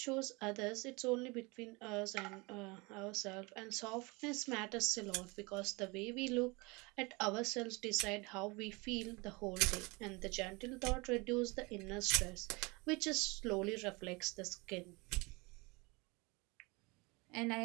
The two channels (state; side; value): quieter; left; 26.5 dB